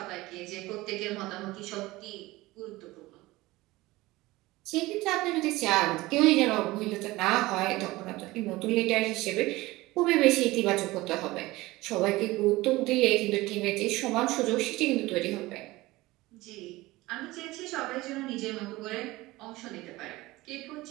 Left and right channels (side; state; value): left; quieter; 19.5 dB